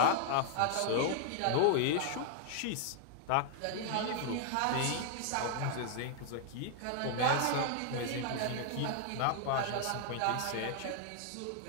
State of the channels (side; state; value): both; different; correlation 0.00